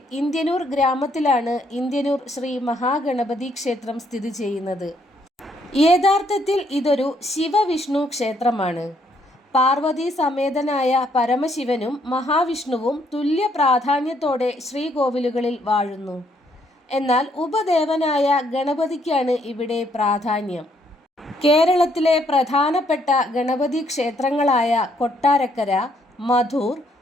ഇന്ത്യനൂർ ഗ്രാമത്തിലാണ് ഇന്ത്യനൂർ ശ്രീ മഹാഗണപതി ക്ഷേത്രം സ്ഥിതി ചെയ്യുന്നത്. യഥാർത്ഥത്തിൽ ഇതൊരു ശിവവിഷ്ണു ക്ഷേത്രമാണ്. പാർവതി സമേതനായ പരമശിവനും മഹാവിഷ്ണുവും തുല്യ പ്രാധാന്യത്തോടെ ശ്രീകോവിലുകളിൽ വാഴുന്നു. എന്നാൽ ഉപദേവനായ ഗണപതിക്കാണ് ഇവിടെ പ്രാധാന്യം. കേരളത്തിലെ പ്രധാനപ്പെട്ട ഗണപതി ക്ഷേത്രങ്ങളായ കൊട്ടാരക്കര, മധൂർ,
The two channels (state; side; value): normal; both; correlation 0.70